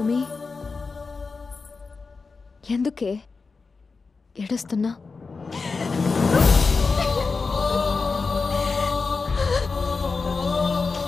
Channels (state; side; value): quieter; right; 4.4 dB